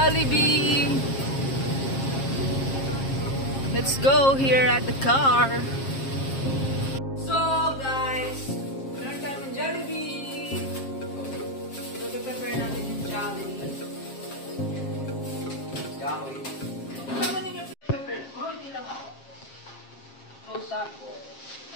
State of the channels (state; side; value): late; right; 7.5 ms